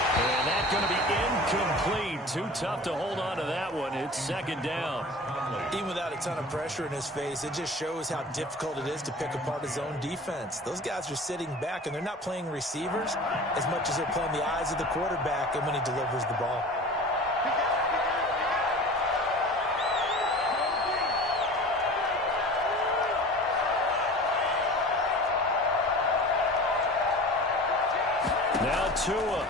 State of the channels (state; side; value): normal; both; correlation 0.38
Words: And that's going to be incomplete. Too tough to hold on to that one. It's second down. Even without a ton of pressure in his face, it just shows how difficult it is to pick apart his own defense. Those guys are sitting back, and they're not playing receivers as much as they're playing the eyes of the quarterback and when he delivers the ball. Now